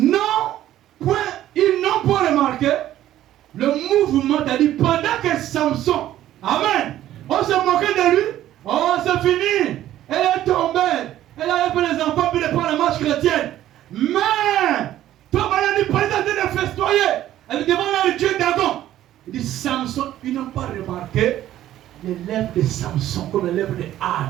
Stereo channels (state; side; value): quieter; left; 12.9 dB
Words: point, ils n'ont pas remarqué le mouvement, c'est-à-dire pendant que Samson, Amen, on se moquait de lui, oh c'est fini, elle est tombée, elle a fait les enfants puis elle prend la marche chrétienne. Mais, toi, elle dit, pas de festoyer, elle demande à Dieu Dagon. Il dit, Samson, ils n'ont pas remarqué les lèvres de Samson comme les lèvres de